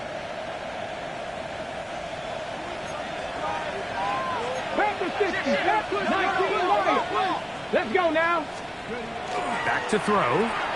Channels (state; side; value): identical; both; correlation 1.00